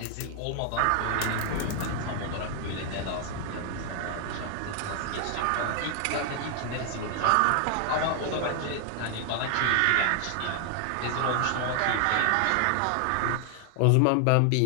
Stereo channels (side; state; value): both; different; correlation 0.00